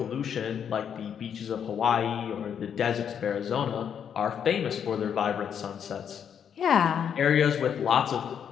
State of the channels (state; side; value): quieter; right; 8.2 dB